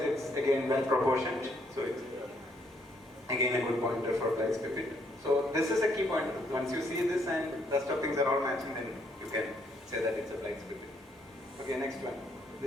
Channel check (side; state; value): both; normal; correlation 0.70